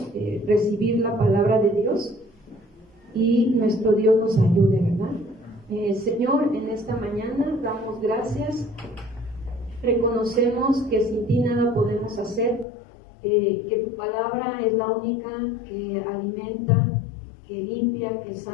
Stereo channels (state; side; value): drops out; right; at 12.7 s